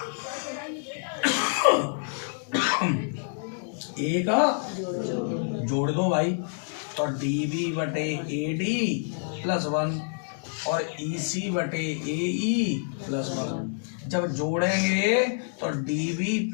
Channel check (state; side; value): silent; right; digital silence